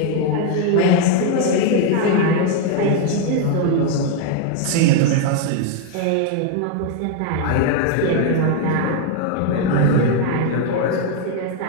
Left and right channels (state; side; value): different; both; correlation 0.00